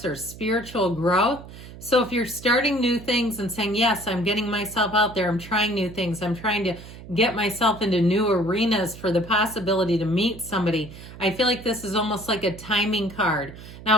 or spiritual growth. So if you're starting new things and saying, yes, I'm getting myself out there, I'm trying new things, I'm trying to get myself into new arenas for the possibility to meet somebody, I feel like this is almost like a timing card.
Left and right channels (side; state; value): right; noise; hum, 15 dB below the sound